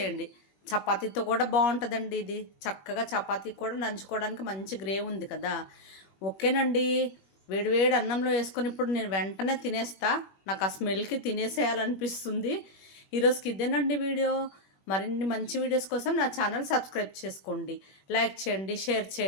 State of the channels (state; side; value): late; right; 21 ms